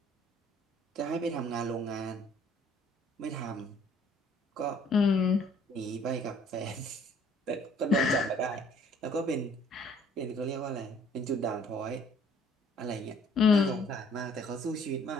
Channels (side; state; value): both; normal; correlation 0.59